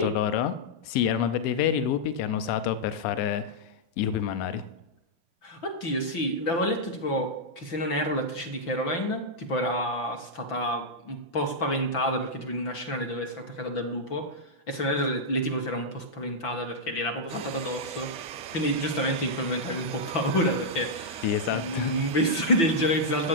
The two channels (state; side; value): late; right; 6.0 ms